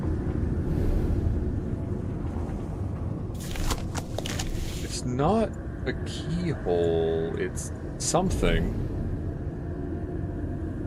It's not a keyhole, it's something.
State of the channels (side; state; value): both; identical; correlation 1.00